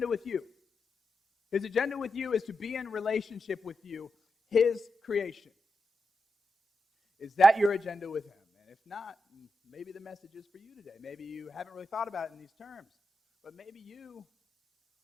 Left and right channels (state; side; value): normal; both; correlation 0.87